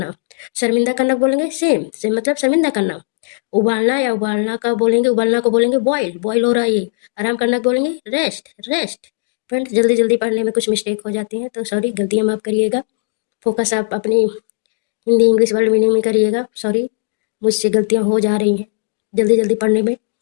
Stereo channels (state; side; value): silent; right; digital silence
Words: शर्मिंदा करना को बोलेंगे सेम सेम मतलब शर्मिंदा करना। उबालना या उबालना का बोलेंगे उबालना को बोलेंगे बॉयल बॉयल हो रहा है ये। आराम करना को बोलेंगे रेस्ट रेस्ट। फ्रेंड्स जल्दी जल्दी पढ़ने में कुछ मिस्टेक हो जाती हैं तो सॉरी गलतियाँ माफ करिएगा। फोकस आप अपनी हिंदी इंग्लिश वर्ड मीनिंग में करिएगा। सॉरी मुझसे गलतियाँ हो जा रही हैं जल्दी जल्दी पढ़ने में,